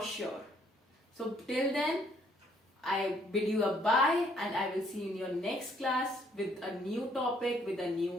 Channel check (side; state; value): both; normal; correlation 0.66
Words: sure. So till then, I bid you a bye, and I will see you in your next class with a new topic, with a